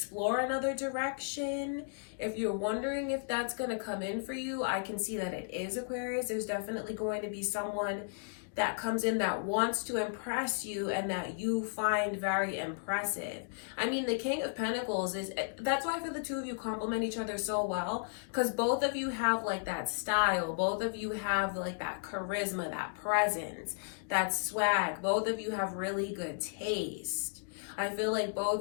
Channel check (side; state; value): right; silent; digital silence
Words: another direction. If you're wondering if that's going to come in for you, I can see that it is, Aquarius. There's definitely going to be someone that comes in that wants to impress you and that you find very impressive. I mean, the King of Pentacles that's why I feel the two of you complement each other so well, because both of you have like that style. Both of you have like that charisma, that presence, that swag. Both of you have really good taste. I feel like